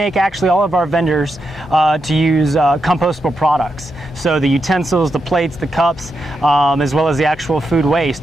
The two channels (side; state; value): both; normal; correlation 0.85